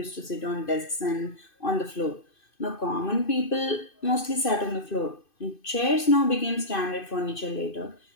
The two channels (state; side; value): late; right; 2.5 ms